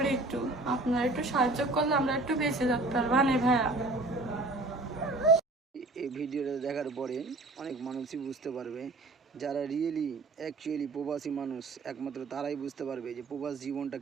একটু আপনারা একটু সাহায্য করলে আমরা একটু বেঁচে থাকতে পারবো না ভাইয়া। এই ভিডিওটা দেখার পরে অনেক মানুষই বুঝতে পারবে, যারা অ্যাকচুয়ালি প্রবাসী মানুষ, একমাত্র তারাই বুঝতে পারবে যে প্রবাস জীবনটা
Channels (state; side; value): quieter; left; 3.0 dB